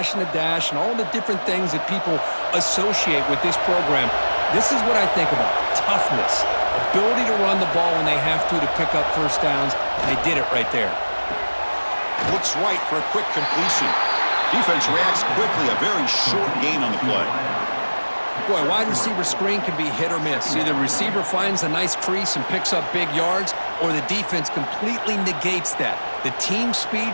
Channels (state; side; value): inverted; both; correlation -1.00